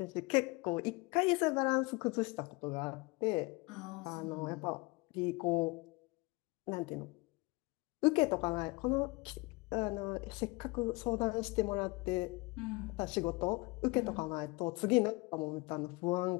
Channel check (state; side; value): quieter; right; 25.6 dB